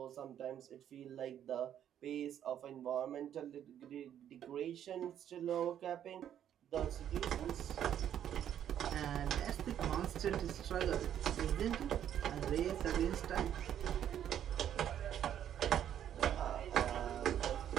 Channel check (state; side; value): quieter; left; 10.1 dB